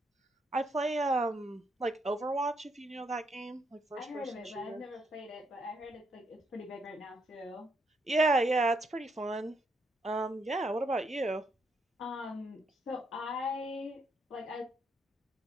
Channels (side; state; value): both; normal; correlation 0.76